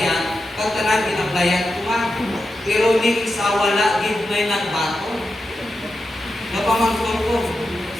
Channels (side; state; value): both; normal; correlation 0.89